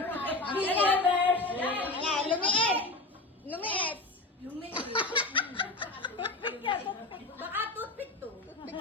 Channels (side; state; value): right; quieter; 3.0 dB